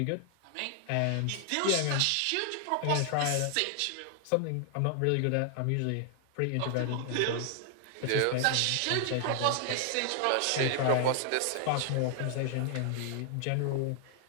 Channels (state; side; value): different; both; correlation 0.00